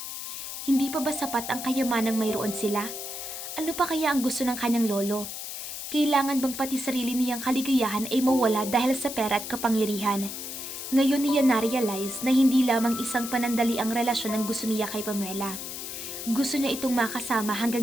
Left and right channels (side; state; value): left; noise; hiss, 7 dB below the sound